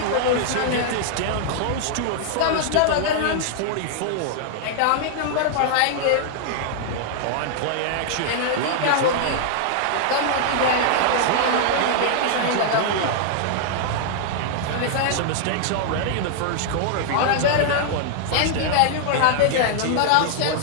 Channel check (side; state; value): both; different; correlation -0.01